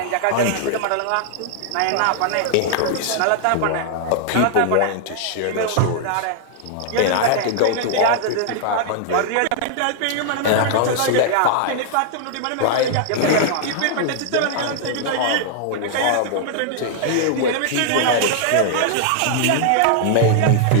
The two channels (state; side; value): different; both; correlation -0.01